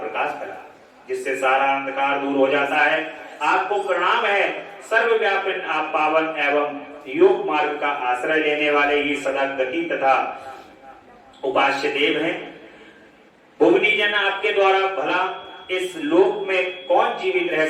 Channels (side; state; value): both; identical; correlation 1.00